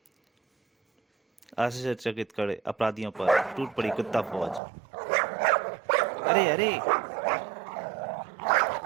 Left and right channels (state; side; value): drops out; left; at 4.6 s